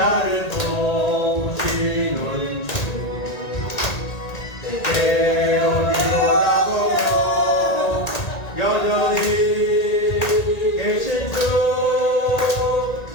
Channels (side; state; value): right; late; 1.8 ms